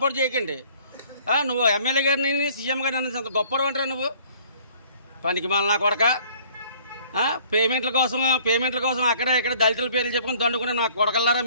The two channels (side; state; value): both; inverted; correlation -0.55